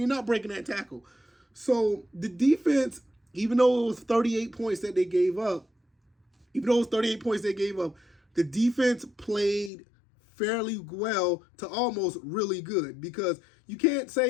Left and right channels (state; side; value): drops out; right; at 9.7 s